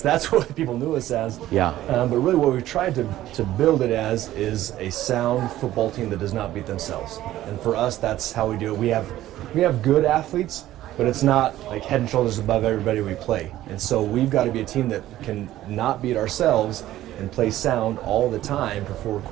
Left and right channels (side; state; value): left; quieter; 14.2 dB